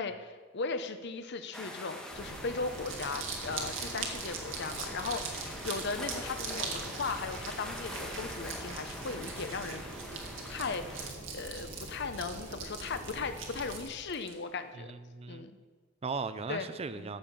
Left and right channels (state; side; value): normal; both; correlation -0.03